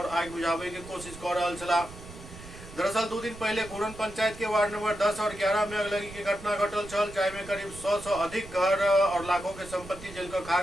आग बुझावे के कोशिश कर रहल छला। दरअसल 2 दिन पहले घूरन पंचायत के वार्ड नंबर 10 और 11 में अगलगी के घटना घटल छल, जाहिमे करीब 100 से अधिक घर और लाखों के संपत्ति जल कर खाक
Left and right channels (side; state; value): right; noise; rumble, 15 dB below the sound